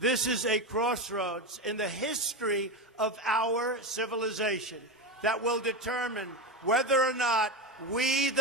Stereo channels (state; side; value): normal; both; correlation 0.17